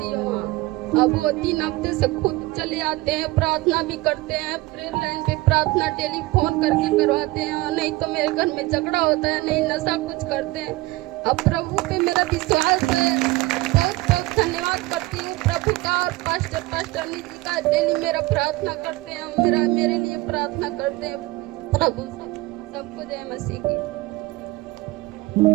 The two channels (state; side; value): quieter; left; 20.4 dB